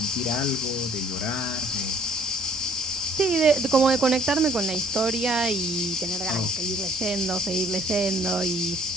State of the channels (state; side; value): normal; both; correlation 0.58